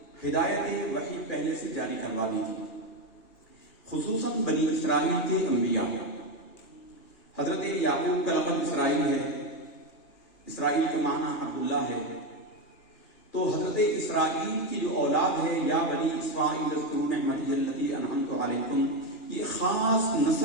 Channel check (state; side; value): late; right; 3.0 ms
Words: ہدایت وحی پہلے سے جاری کروا دی تھی، خصوصاً بنی اسرائیل کے انبیاء. حضرت یعقوب کا لقب اسرائیل ہے، اسرائیل کا معنی عبداللہ ہے. تو حضرت اسرائیل کی جو اولاد ہے، یا بنی اسرائیل اذکروا نعمتی التی انعمت علیکم، یہ خاص